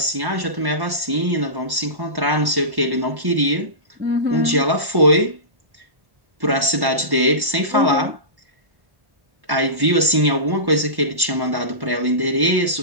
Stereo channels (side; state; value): left; late; 1.1 ms